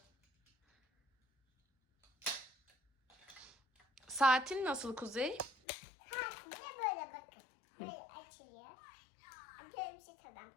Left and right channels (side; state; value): right; drops out; at 5.6 s